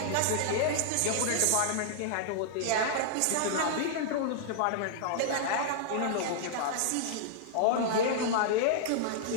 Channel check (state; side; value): different; both; correlation -0.01